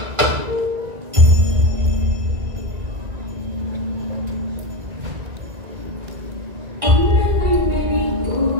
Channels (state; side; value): late; left; 1.9 ms